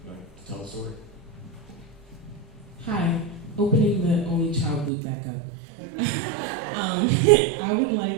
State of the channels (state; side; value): drops out; left; at 4.9 s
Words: tell the story. Hi, opening the only child loop back up. I would